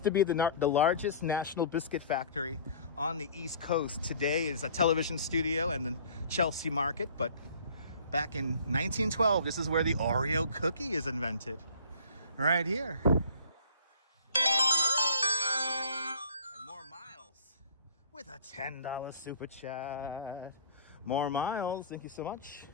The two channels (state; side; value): inverted; both; correlation -0.48